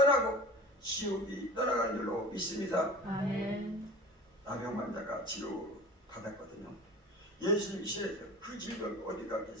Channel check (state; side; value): normal; both; correlation 0.37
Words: 지옥이 떠나가는 줄로 믿습니다. 아멘. 나병 환자가 치료 받았거든요. 예수님이 시에서 그 질병이 어디